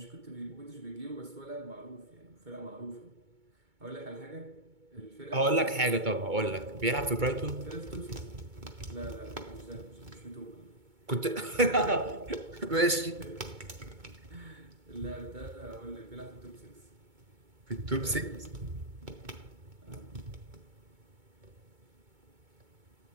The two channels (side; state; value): left; late; 2.2 ms